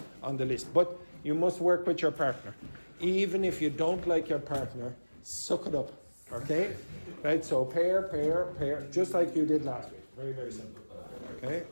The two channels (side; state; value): both; inverted; correlation -1.00